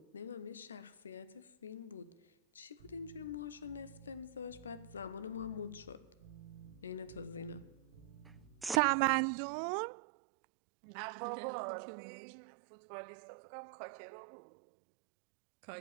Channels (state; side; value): drops out; left; at 8.8 s